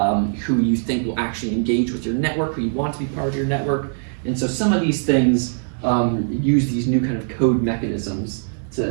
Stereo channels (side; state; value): left; silent; digital silence